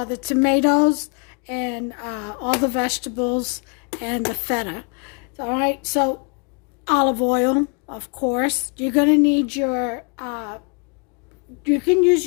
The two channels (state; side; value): quieter; right; 36.8 dB